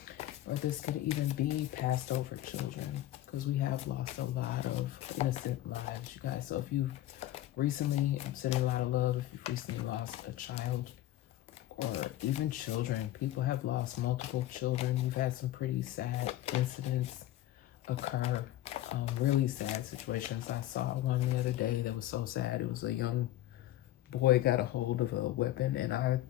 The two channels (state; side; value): quieter; right; 14.2 dB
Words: Or this could even be passed over children, because we have lost a lot of innocent lives, you guys. So if you've recently, I'm sending a lot of love, if you've recently lost a child, or even children, people have lost multiple children. We've had some pretty sad incidents occur, really sad situations. I saw one the other day that was so sad. It was a young boy got a hold of a weapon, and I